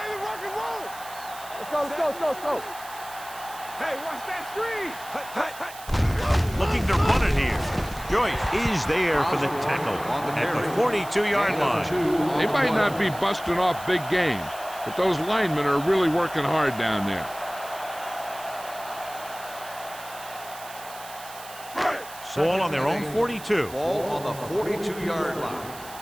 Let's go. Hey, watch that screen. Looking to run it here. Joyce is there for the tackle at the 42-yard line. They might not be busting off big games, but those linemen are really working hard down there. Ball on their own 42. Ball on the 42-yard line.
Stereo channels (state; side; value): noise; right; hiss, 16 dB below the sound